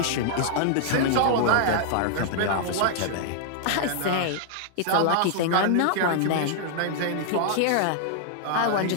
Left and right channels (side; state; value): both; different; correlation -0.01